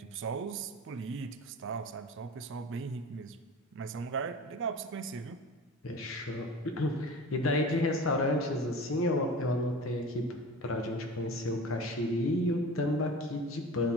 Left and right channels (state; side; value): normal; both; correlation 0.36